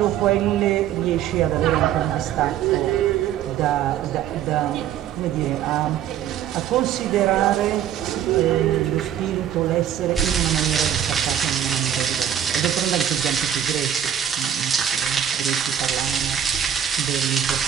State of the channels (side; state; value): left; quieter; 10.0 dB